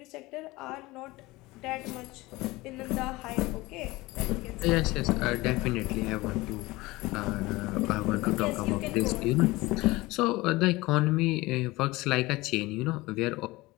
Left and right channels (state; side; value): quieter; right; 20.8 dB